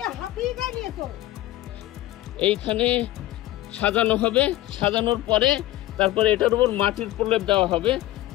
এইখানে সাজানো হবে, সাজানোর পরে তারপরে এটার উপর মাটির প্রলেপ দেওয়া হবে।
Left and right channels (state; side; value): quieter; right; 15.8 dB